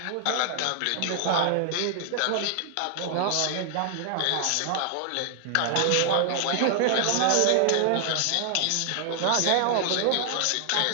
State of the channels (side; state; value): both; different; correlation 0.00